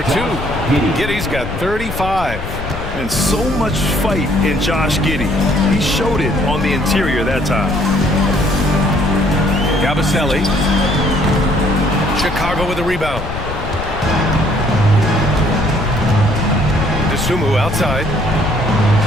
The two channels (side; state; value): left; noise; rumble, 8 dB below the sound